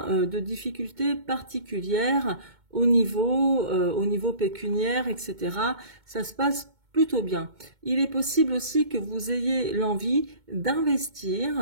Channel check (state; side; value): late; left; 2.2 ms